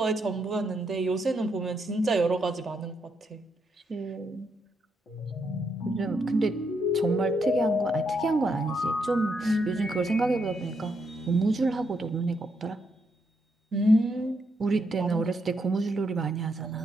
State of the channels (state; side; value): normal; both; correlation 0.79